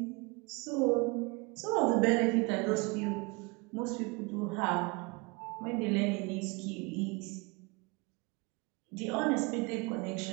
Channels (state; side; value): quieter; left; 27.5 dB